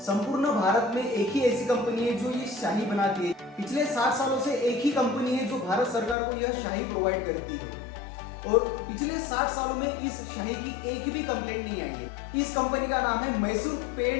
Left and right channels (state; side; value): drops out; right; at 6.2 s